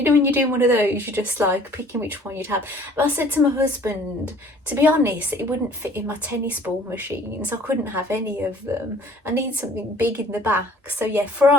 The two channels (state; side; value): normal; both; correlation 0.53